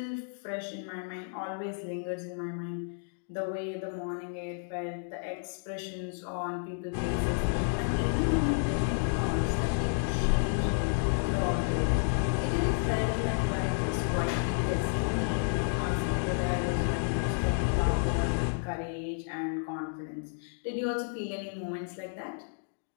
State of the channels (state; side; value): silent; right; digital silence